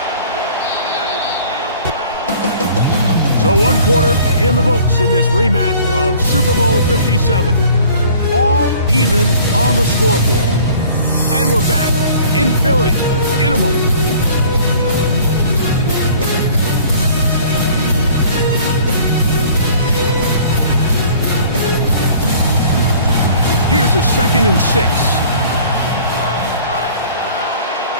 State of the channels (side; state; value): both; inverted; correlation -0.50